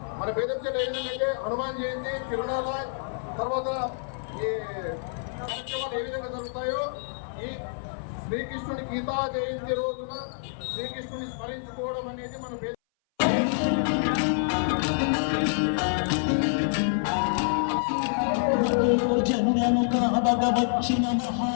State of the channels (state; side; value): silent; right; 59 dB below the other